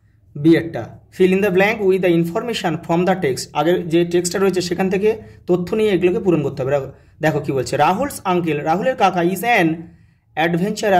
বিয়েরটা, fill in the blank with the information from the text, আগের যে টেক্সটটা রয়েছে সেখান থেকে তথ্য নিয়ে এগুলোকে পূরণ করতে হবে। দেখো কি বলছে, রাহুলস আঙ্কেল, রাহুলের কাকা ইজ অ্যান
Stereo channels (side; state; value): both; identical; correlation 1.00